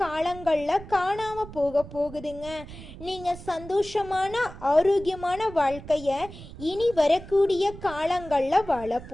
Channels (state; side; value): noise; right; rumble, 15 dB below the sound